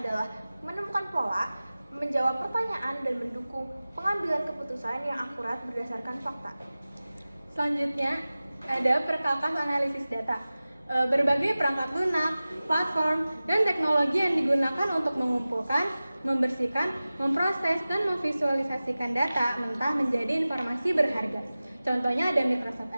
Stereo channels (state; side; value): inverted; both; correlation -0.97